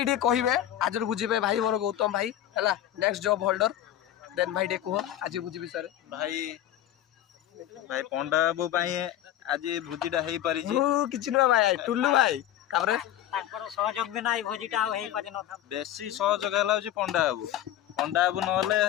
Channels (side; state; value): right; quieter; 12.1 dB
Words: टे कहे आज बुझे भाई मोर गौतम भाई है नेक्स्ट जॉब होल्डर देन भाई टे कह आज भोजी विषय भाई भाई पंडा बाबू आज भोजीटा हो पारि कि भाई टुल्लू भाई सहयोग बिना भोजीटा बेसी सहयोग है पंडा बाबू नहे